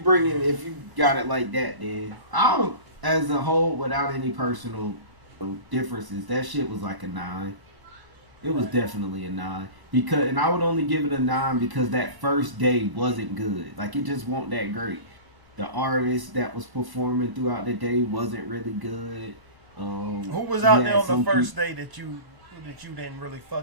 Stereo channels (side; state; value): left; late; 1.0 ms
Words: got it like that, then I don't. As a whole, without any personal differences, that shit was like a 9. It was definitely a 9 and I would only give it a 9 because that first day wasn't good. Like it just wasn't that great. The artist that was performing throughout the day wasn't really good. Who was out there on the first day that you didn't really